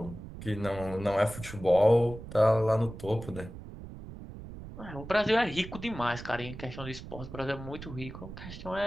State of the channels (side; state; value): right; noise; rumble, 12 dB below the sound